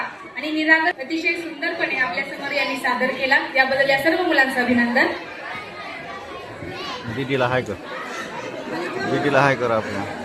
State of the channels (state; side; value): identical; both; correlation 1.00